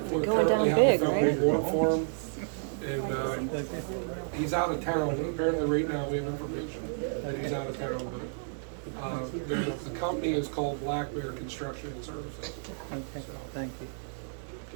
we currently have a felony warrant for him. And, he's out of town. Apparently right now we have information that he's out of town, but, the company is called Black Bear Construction and Services. Okay, thank you.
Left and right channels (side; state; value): left; silent; digital silence